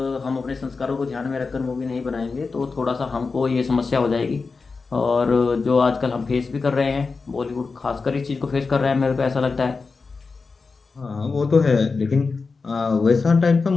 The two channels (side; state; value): right; quieter; 4.4 dB